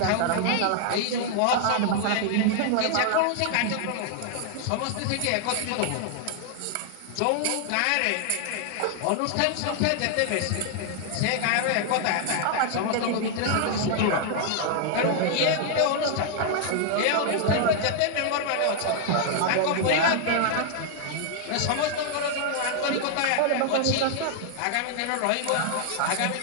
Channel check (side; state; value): both; different; correlation 0.00